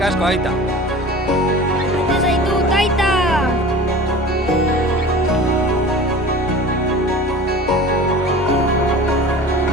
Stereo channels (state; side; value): normal; both; correlation 0.38